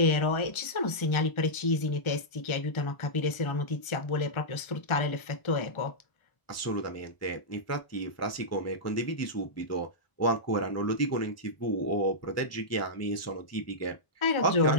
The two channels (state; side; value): late; right; 1.3 ms